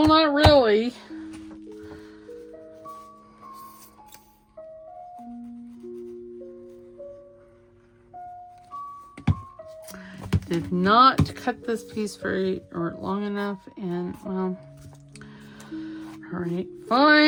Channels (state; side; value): identical; both; correlation 1.00